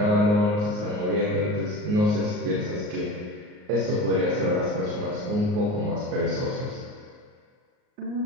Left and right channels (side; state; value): left; late; 38 ms